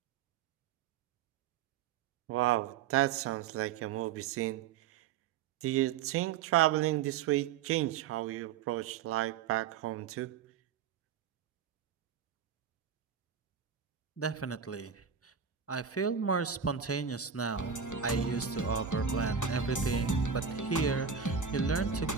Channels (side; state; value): left; quieter; 7.1 dB